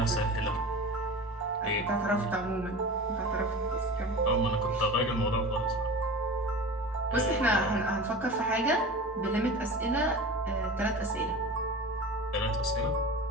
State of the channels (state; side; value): normal; both; correlation 0.34